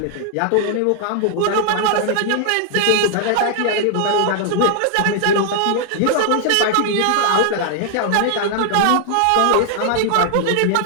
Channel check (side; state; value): both; different; correlation 0.00